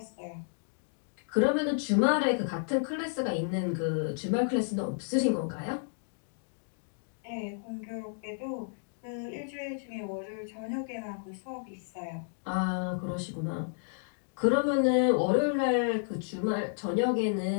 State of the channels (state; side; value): silent; right; digital silence